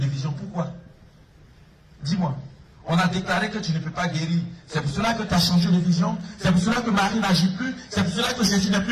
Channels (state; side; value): identical; both; correlation 1.00